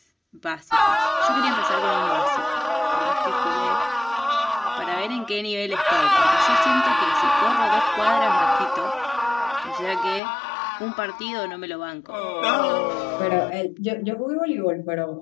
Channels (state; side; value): drops out; right; at 10.2 s